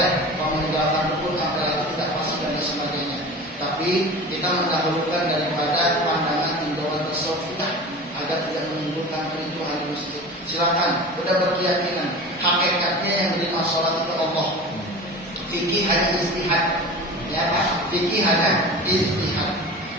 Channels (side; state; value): both; normal; correlation 0.35